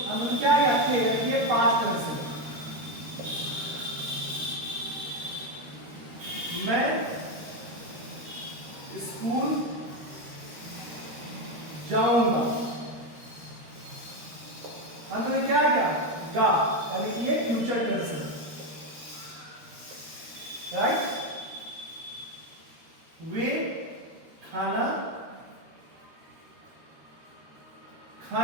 अंत क्या गया थे, ये पास्ट टेंस है। मैं स्कूल जाऊंगा, अंत में क्या गया, गा, यानी कि ये फ्यूचर टेंस है, राइट। वे खाना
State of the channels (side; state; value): left; late; 13 ms